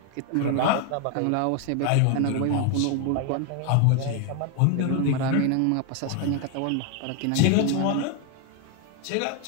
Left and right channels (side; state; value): both; different; correlation 0.01